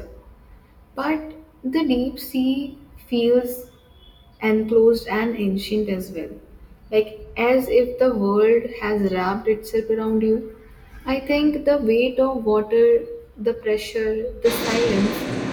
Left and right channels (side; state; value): both; identical; correlation 1.00